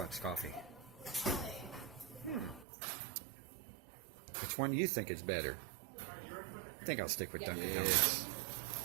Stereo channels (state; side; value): drops out; left; at 2.7 s